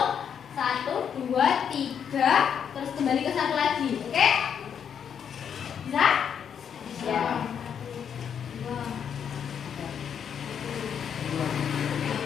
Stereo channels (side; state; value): right; quieter; 7.9 dB